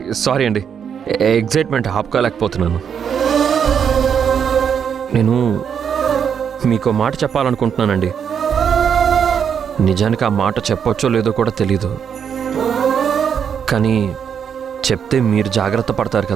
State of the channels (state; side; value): quieter; left; 7.6 dB